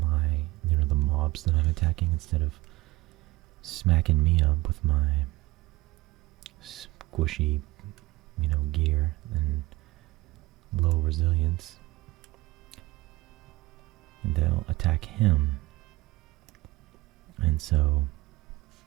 the mobs that I'm attacking, instead of smacking me up with my squishy, gear and low resilience. And they'll attack him. And so,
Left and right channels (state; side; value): quieter; left; 20.0 dB